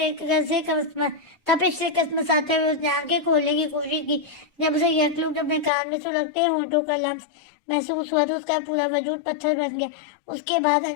तपिश से कसमसाते हुए उसने आंखें खोलने की कोशिश की। जब उसे यकलुक अपने कान में सुलगते होठों का लम्स महसूस हुआ तो उसका पूरा वजूद पत्थर बन गया। उसके बाद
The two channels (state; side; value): drops out; right; at 5.7 s